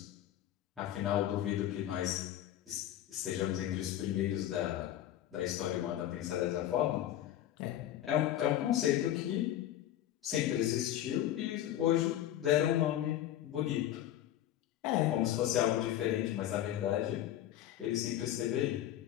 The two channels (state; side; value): quieter; right; 12.5 dB